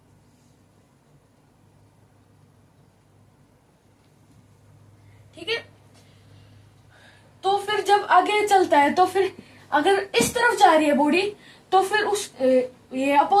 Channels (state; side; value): identical; both; correlation 1.00